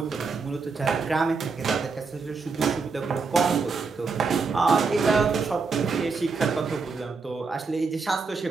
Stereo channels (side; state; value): left; quieter; 4.7 dB